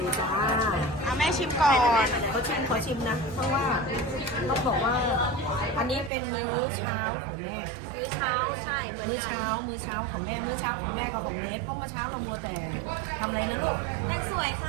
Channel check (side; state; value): left; drops out; at 6.1 s